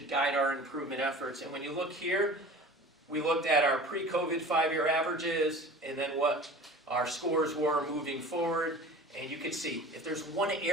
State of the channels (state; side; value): normal; both; correlation 0.40